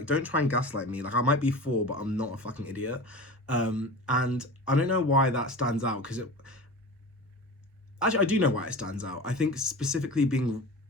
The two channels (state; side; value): normal; both; correlation 0.33